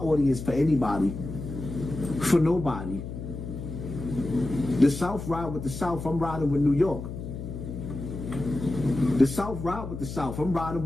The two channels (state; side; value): noise; left; hum, 8 dB below the sound